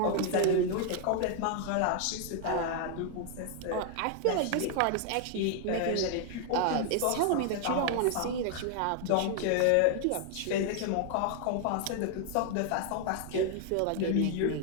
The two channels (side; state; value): both; different; correlation 0.00